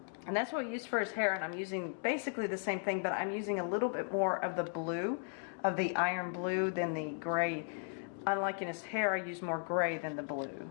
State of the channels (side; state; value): right; silent; 54 dB below the other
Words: And that's what we used for his hair, and I'm using basically the same thing, but I'm using a little bit more of the blue, of the iron blue, than the gray. Unlike in his hair, I use more gray than the blue.